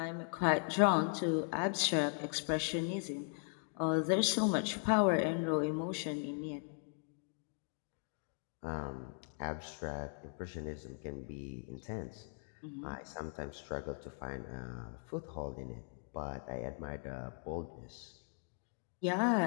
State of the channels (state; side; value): silent; right; 52 dB below the other